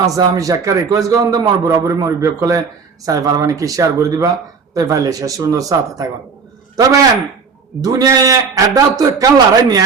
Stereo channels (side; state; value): left; quieter; 5.4 dB